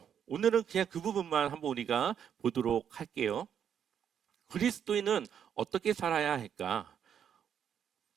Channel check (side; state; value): left; quieter; 8.5 dB